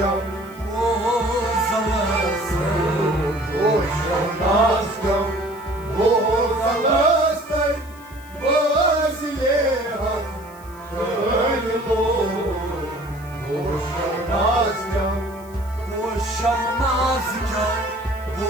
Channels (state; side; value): noise; left; hiss, 24 dB below the sound